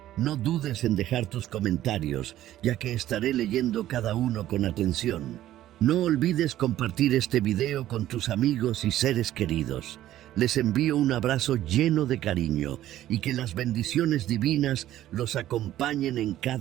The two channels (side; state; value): left; quieter; 13.4 dB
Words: No dudes en dejar tus comentarios, ya que estaré leyendo cada uno con atención. No olvides compartir este video con tus amigos y seres queridos. Les envío un abrazo lleno de cariño y que las bendiciones divinas los acompañen en